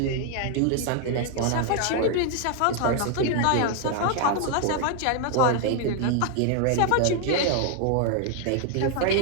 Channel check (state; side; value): different; both; correlation 0.00